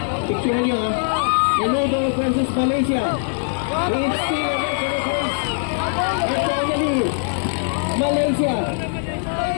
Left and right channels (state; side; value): silent; right; digital silence